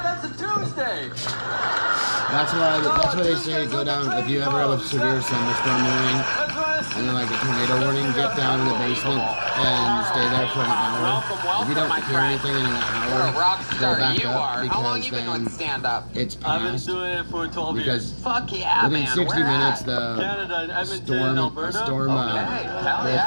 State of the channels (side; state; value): both; inverted; correlation -1.00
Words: That's a Tuesday. birthday. That's why they say go down if you ever have a severe thunderstorm warning and then like a tornado warning, get down in the basement and stay there for an hour. If you don't hear anything in an hour, go back up because then it's past. I've been doing it for 12 years. Fuck yeah, within man. 60 minutes, the Canada, Edmonton, storm Alberta. will